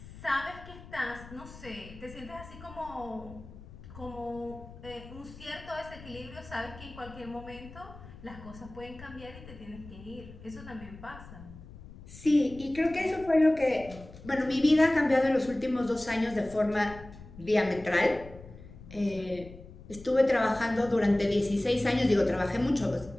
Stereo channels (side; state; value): left; noise; rumble, 17 dB below the sound